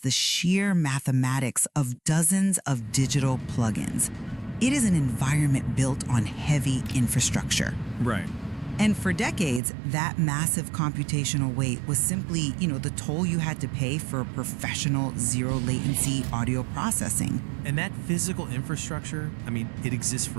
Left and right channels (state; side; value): drops out; left; at 9.6 s